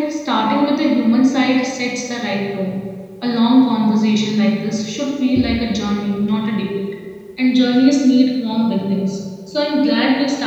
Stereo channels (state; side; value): identical; both; correlation 1.00